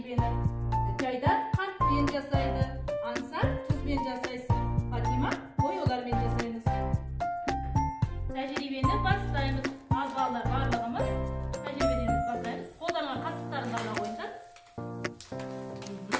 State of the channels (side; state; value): both; identical; correlation 1.00